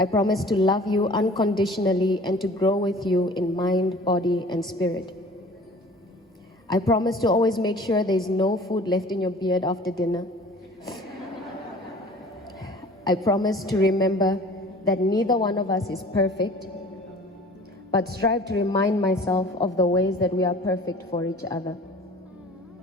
promise to love you unconditionally and to grow with you in mind, body, and spirit. I promise to always make sure there's no food left in your beard after dinner. I promise to remember that neither one of us is perfect, but strive to remind myself of the ways that we are perfect for each other.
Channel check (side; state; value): both; normal; correlation 0.46